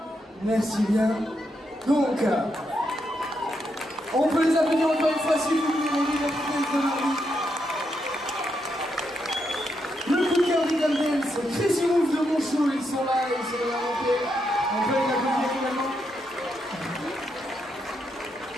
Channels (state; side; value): normal; both; correlation 0.81